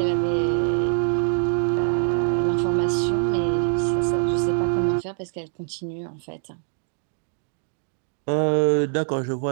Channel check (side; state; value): left; silent; digital silence